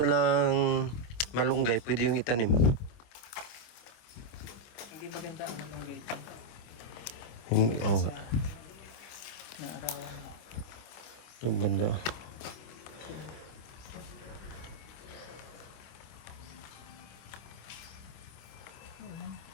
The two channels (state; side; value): late; right; 26 ms